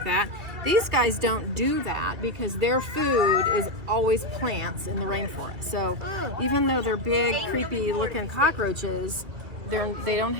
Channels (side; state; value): left; late; 2.1 ms